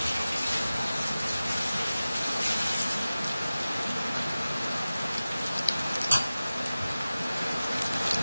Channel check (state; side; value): inverted; both; correlation -0.96